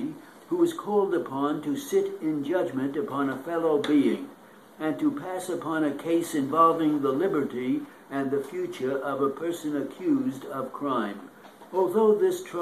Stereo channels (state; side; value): identical; both; correlation 1.00